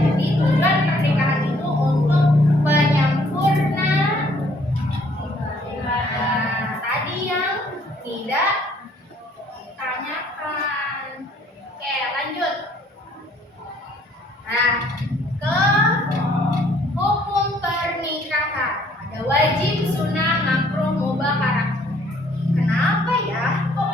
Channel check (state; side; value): normal; both; correlation 0.62